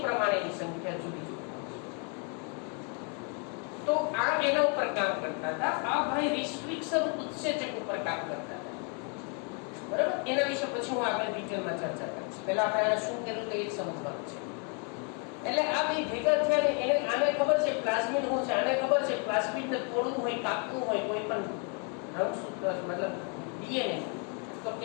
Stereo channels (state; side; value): quieter; right; 38.0 dB